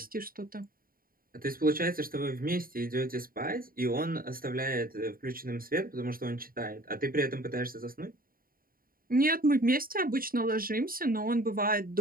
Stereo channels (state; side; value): late; left; 0.42 ms